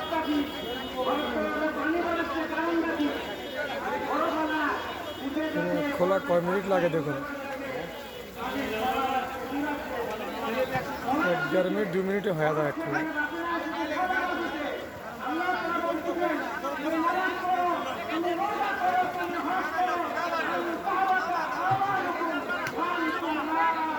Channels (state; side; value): identical; both; correlation 1.00